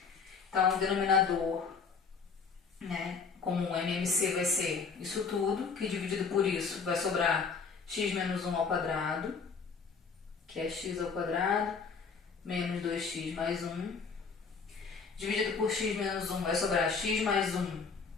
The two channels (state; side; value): quieter; right; 5.3 dB